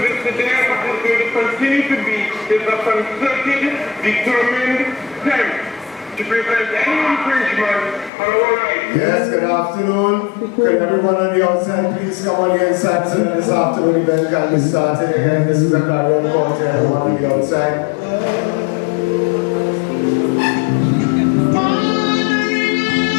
is today, what is going to continue to be, is a concerted, determined attempt to prevent any infringement on our rights. Yes, good afternoon. Could everyone on the outside please come on the inside so that this afternoon event can be started again. This is a carry-on call to everyone on the outside.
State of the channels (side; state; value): right; drops out; at 8.1 s